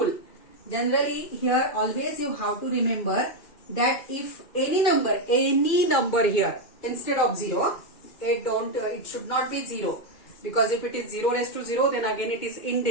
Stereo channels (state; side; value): late; right; 2.4 ms